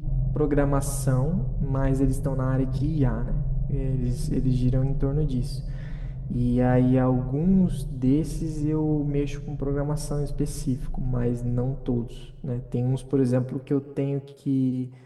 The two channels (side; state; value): both; identical; correlation 1.00